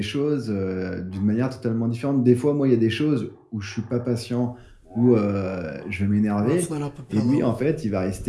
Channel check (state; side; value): identical; both; correlation 1.00